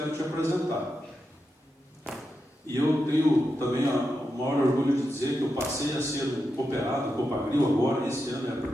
te apresentar. E eu tenho também o maior orgulho de dizer que eu passei a ser um cooperado, Copagril agora, esse ano é a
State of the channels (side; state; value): both; normal; correlation 0.87